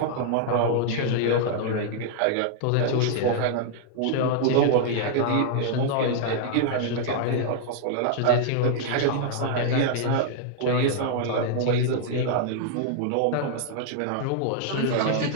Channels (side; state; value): both; different; correlation -0.01